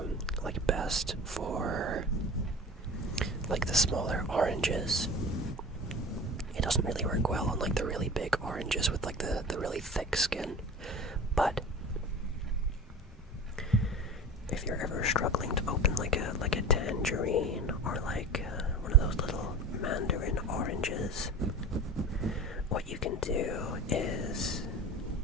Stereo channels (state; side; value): normal; both; correlation 0.36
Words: like best for like the smaller oranges. It doesn't really work well on like the really big oranges with like the really thick skin. But if you're ever struggling to open like a tangerine or like one of those little mandarin oranges, what you can do is